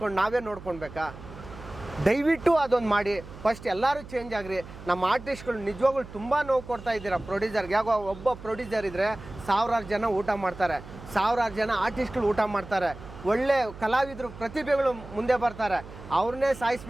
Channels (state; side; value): noise; right; hum, 15 dB below the sound